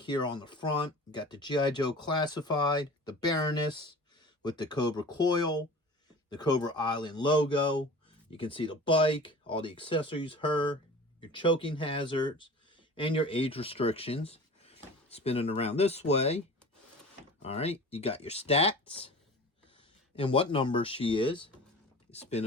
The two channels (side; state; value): both; normal; correlation 0.39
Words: here on the front. You got the G.I. Joe classified, the Baroness with the Cobra Coil, the Cobra Island logo. You can see the bike, all the accessories, her, your choking hazards, and your age restrictions. Spinning around this way. All right, you got your stats and what number she is.